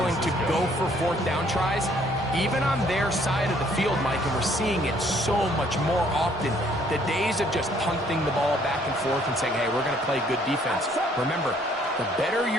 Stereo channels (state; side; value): normal; both; correlation 0.63